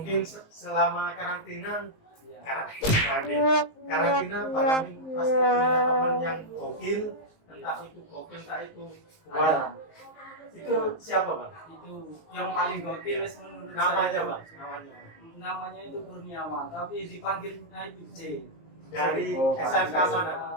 selama karantina ya. karantina Bang Amin pasti punya teman yang gokil, entah itu gokil entah itu buat. Ada. Itu siapa Bang? Itu yang paling gokil wis menurut Namanya saya. Bang, namanya Namanya itu Kurniawan tapi dipanggilnya itu C. dari Oh, SMK Pak. mana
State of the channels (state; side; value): late; right; 19 ms